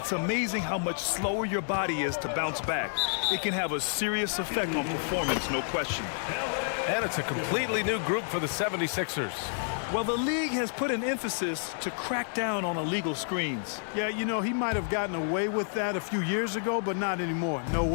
amazing how much slower your body is to bounce back. It can have a serious effect on performance, no question. And it's a completely new group for the 76ers. Well, the league has put an emphasis to crack down on illegal screens. Yeah, you know, he might have gotten away with that a few years ago, but not anymore. No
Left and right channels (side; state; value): right; silent; digital silence